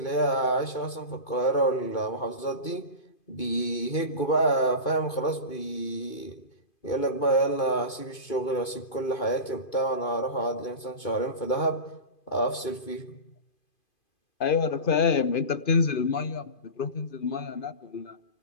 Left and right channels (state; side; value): late; right; 2.5 ms